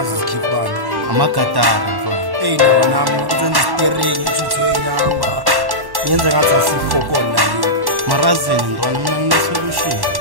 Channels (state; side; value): late; left; 1.1 ms